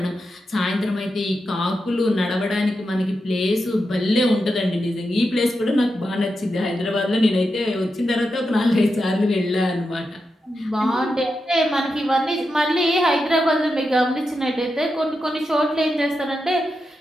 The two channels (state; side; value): normal; both; correlation 0.88